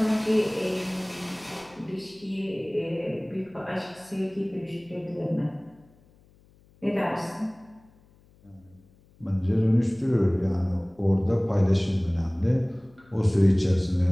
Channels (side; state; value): left; noise; hum, 29 dB below the sound